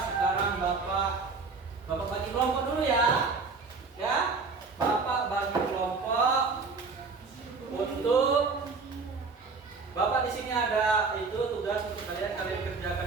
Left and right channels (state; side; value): quieter; left; 4.4 dB